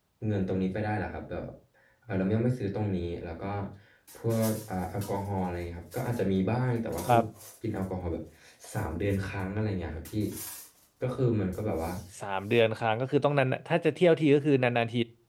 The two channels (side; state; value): both; identical; correlation 1.00